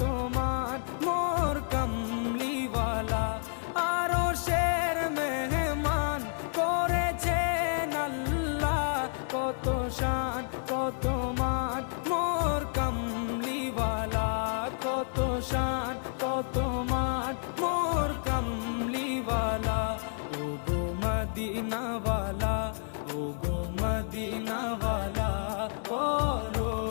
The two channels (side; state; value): right; silent; 58 dB below the other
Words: মান মোর কামলিওয়ালা। আরশের মেহমান করেছেন আল্লাহ, কত শান কত মান মোর কামলিওয়ালা, কত শান কত মান মোর কামলিওয়ালা। ও গো মদিনাওয়ালা, ও গো মদিনাওয়ালা, করো